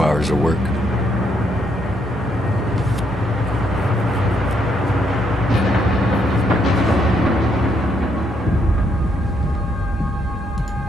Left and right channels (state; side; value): normal; both; correlation 0.74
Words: hours of work.